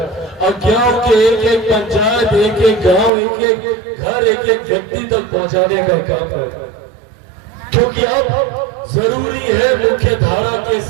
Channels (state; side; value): drops out; left; at 3.1 s